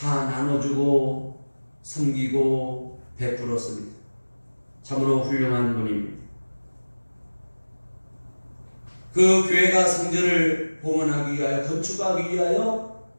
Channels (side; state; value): both; inverted; correlation -1.00